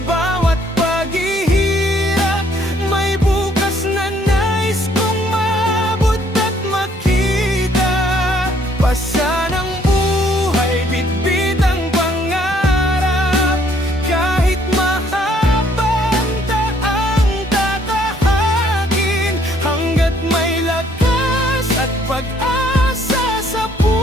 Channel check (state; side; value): normal; both; correlation 0.65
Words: bawat paghihirap, may bukas na nais kong maabot at makita. Pasan ang buhay, bitbit ang pangarap. Kahit pag-asa sa